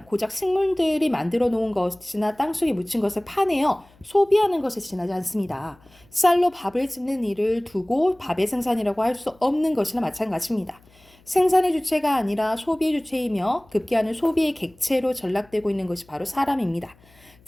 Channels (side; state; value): left; noise; hum, 29 dB below the sound